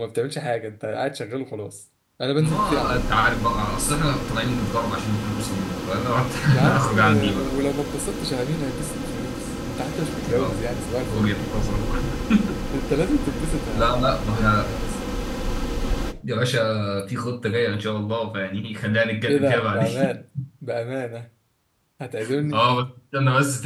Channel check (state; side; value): identical; both; correlation 1.00